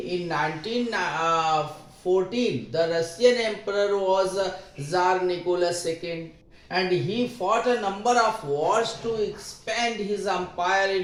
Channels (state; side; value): identical; both; correlation 1.00